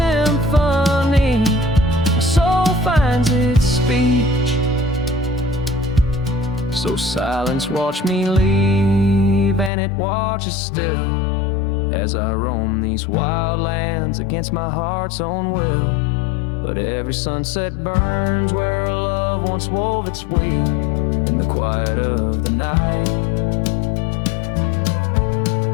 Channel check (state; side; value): drops out; right; at 9.7 s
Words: my soul finds its speech. So silence watched me leave, and it watches still as I roam these wild lands against my heart's own will. But every sunset burns where a love once wove its way in the quiet of the night.